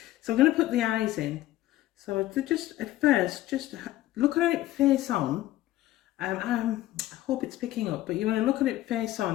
so I'm going to put the eyes in. So to just at first, just look at it face on. I hope it's picking up, but you want to look at it face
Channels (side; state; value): right; quieter; 15.1 dB